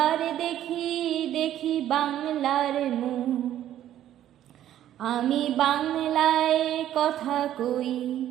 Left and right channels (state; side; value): quieter; left; 11.9 dB